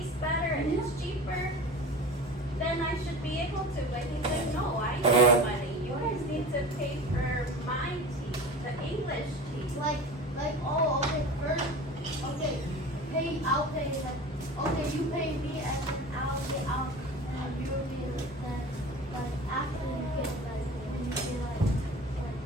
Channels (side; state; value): both; normal; correlation 0.35